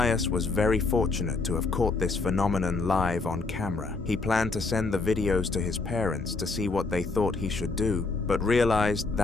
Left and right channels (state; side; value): quieter; right; 3.8 dB